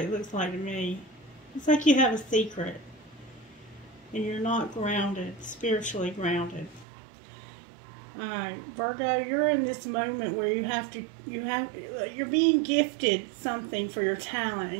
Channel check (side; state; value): left; drops out; at 6.9 s